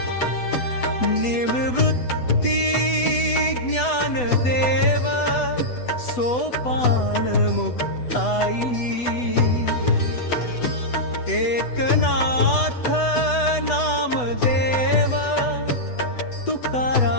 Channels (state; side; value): late; right; 8.1 ms